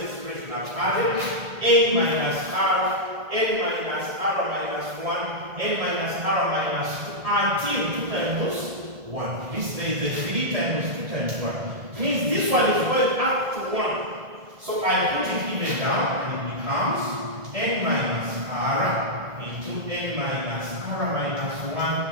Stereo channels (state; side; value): late; left; 1.7 ms